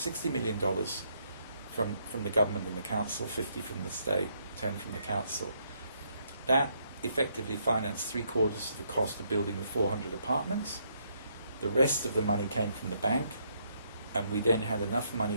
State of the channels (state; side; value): inverted; both; correlation -0.72